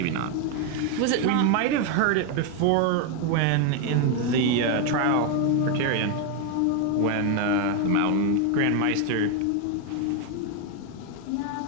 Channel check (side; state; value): both; different; correlation 0.01